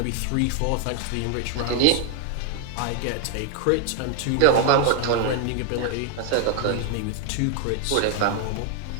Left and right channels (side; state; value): both; different; correlation 0.00